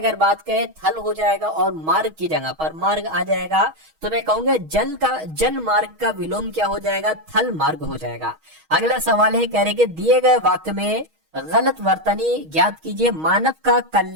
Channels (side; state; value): left; late; 6.3 ms